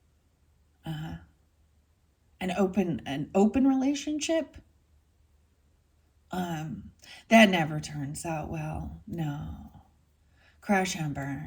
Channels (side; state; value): both; identical; correlation 1.00